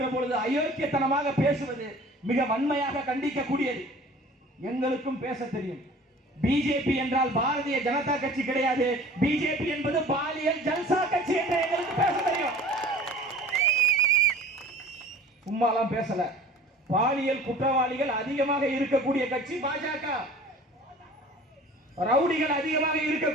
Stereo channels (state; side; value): normal; both; correlation 0.45